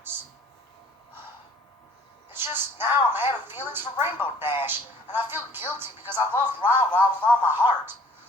It's just now I'm having feelings for Rainbow Dash, and I feel guilty because I love Ra with all my heart.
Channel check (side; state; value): both; normal; correlation 0.55